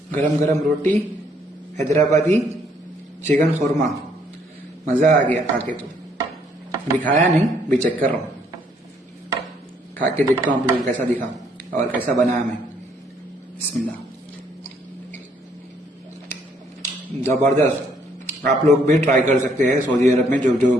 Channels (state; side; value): normal; both; correlation 0.68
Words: गरम गरम रोटी, हैदराबादी चिकन खुरमा, मजा आ गया खा के। तो अभी खाया नहीं, अभी चेक कर रहा हूं, खा के देखता हूं आप लोगों को कैसा दिखा और कैसा बनाया मैं। बिस्मिल्लाह, जबरदस्त। आप लोग भी ट्राई कर सकते हैं सऊदी अरब में जो जो